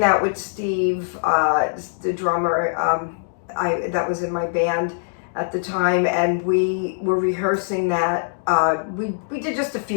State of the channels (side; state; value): right; silent; digital silence